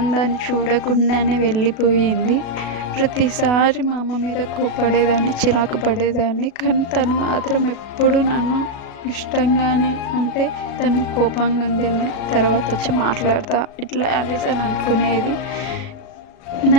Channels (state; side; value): late; right; 37 ms